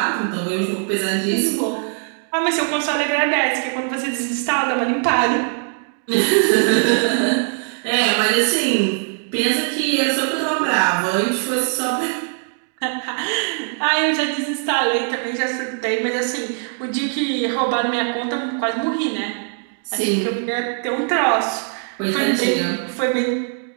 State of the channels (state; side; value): silent; left; 57 dB below the other